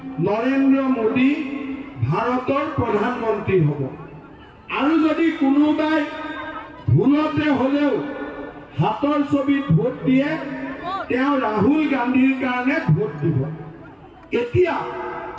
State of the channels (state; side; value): identical; both; correlation 1.00